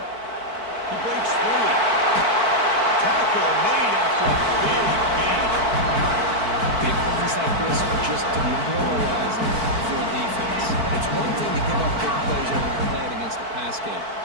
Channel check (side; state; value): left; late; 4.5 ms